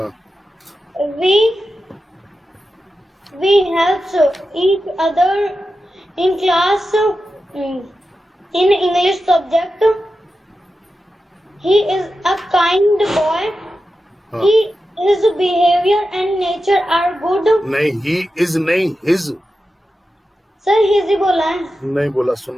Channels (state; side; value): normal; both; correlation 0.91